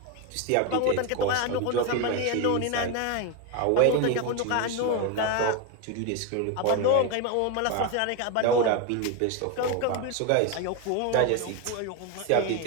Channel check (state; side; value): different; both; correlation 0.02